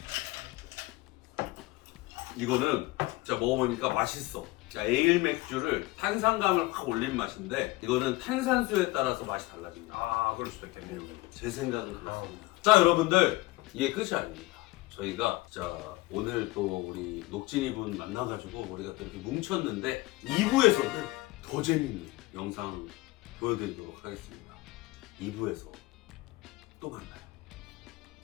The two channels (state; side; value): quieter; right; 20.7 dB